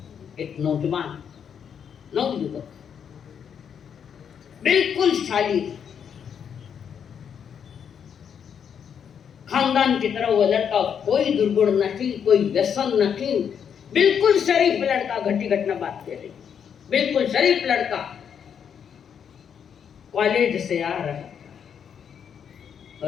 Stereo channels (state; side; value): quieter; right; 7.8 dB